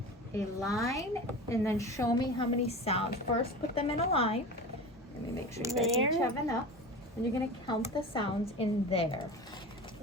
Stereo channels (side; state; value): both; normal; correlation 0.31